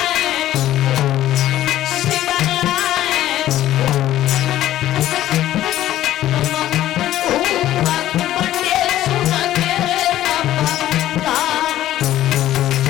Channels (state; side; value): quieter; right; 13.4 dB